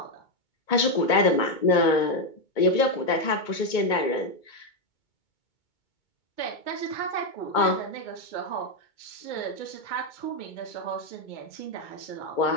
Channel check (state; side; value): late; right; 2.2 ms